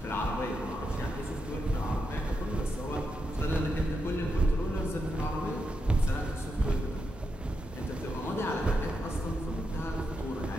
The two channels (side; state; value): both; normal; correlation 0.85